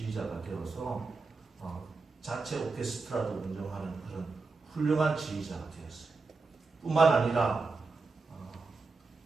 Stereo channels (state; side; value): quieter; left; 4.1 dB